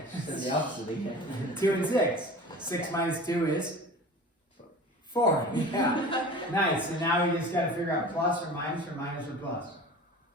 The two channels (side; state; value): both; normal; correlation 0.38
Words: Said the opposite again. 2 and 6, 6 minus 2 is 4, yeah, nice, so now we just gotta figure out plus or minus or plus.